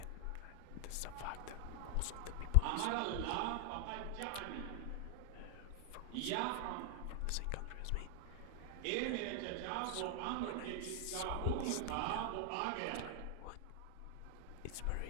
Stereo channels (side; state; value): both; different; correlation 0.00